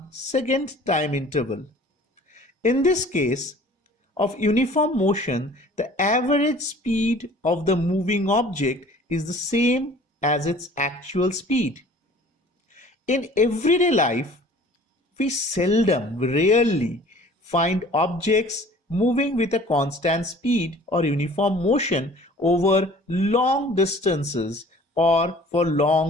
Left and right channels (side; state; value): both; normal; correlation 0.49